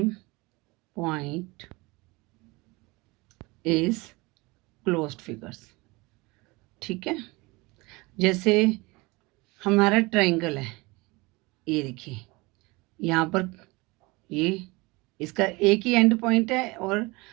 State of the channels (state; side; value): quieter; left; 24.0 dB